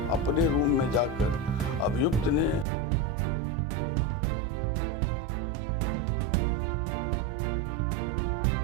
अपने रूम में जाकर अभियुक्त ने अपने कपड़े बदले हैं, सफ़ेद शर्ट पहना है, उसी सफ़ेद शर्ट में वह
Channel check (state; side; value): drops out; left; at 2.7 s